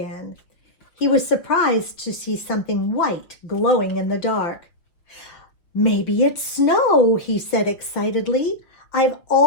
He was surprised to see something white glowing in the dark. "Maybe it's snow," he said excitedly. "I've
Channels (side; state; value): right; late; 5.8 ms